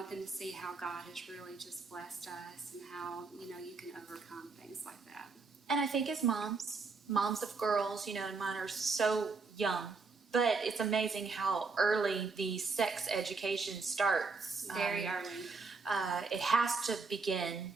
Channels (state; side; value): quieter; left; 4.3 dB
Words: them to see how God has really just blessed us and how, you can overcome things like that. And I think as moms of girls, and mine are so young, but it's amazing how early the sex education starts. Very early. It has to begin